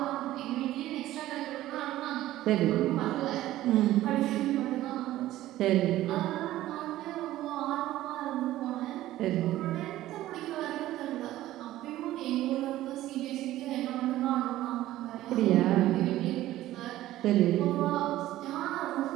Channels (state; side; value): quieter; left; 14.9 dB